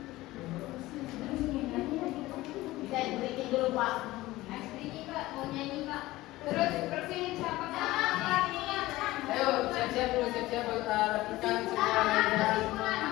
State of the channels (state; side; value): quieter; right; 17.9 dB